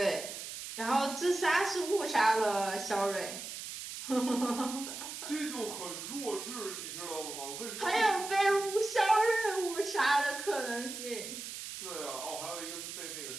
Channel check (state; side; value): noise; right; hiss, 8 dB below the sound